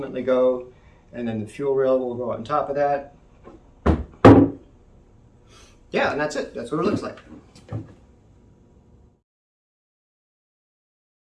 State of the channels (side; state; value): both; identical; correlation 1.00